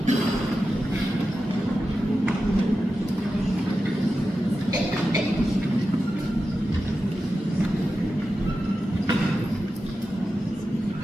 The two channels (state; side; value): normal; both; correlation 0.92